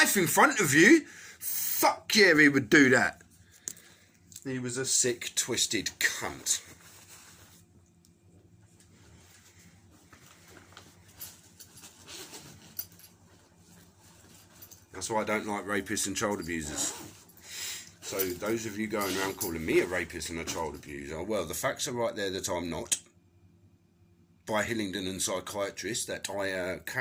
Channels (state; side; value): identical; both; correlation 1.00